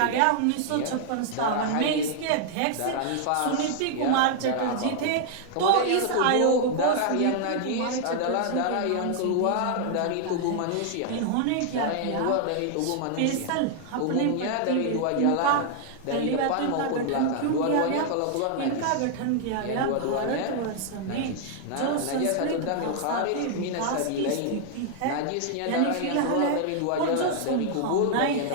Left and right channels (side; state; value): both; different; correlation 0.00